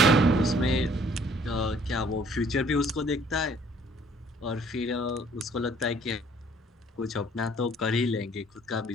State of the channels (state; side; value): normal; both; correlation 0.59